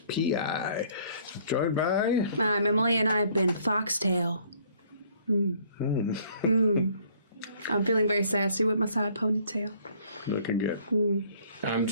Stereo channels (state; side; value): inverted; both; correlation -0.59